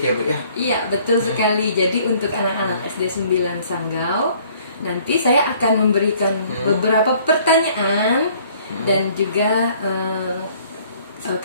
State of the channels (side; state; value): both; inverted; correlation -0.58